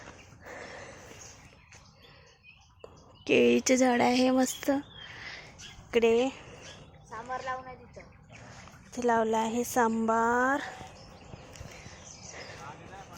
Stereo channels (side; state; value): both; identical; correlation 1.00